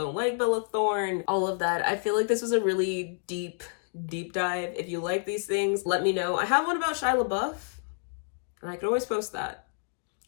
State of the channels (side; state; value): right; silent; digital silence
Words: like Bella Thorne, all of that. I feel like this was a really deep dive. If you like these things, let me know. I have one about Shia LaBeouf, and I could always post that